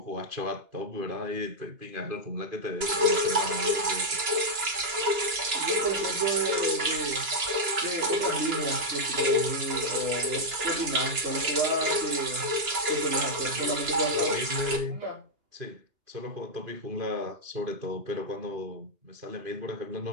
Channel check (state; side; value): late; left; 2.9 ms